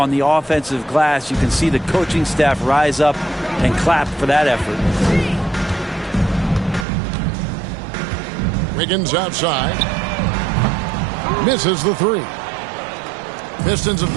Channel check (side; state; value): left; drops out; at 6.9 s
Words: the offensive glass. You can see the coaching staff rise up and clap for that effort. Wiggins outside. Misses the three. Pistons have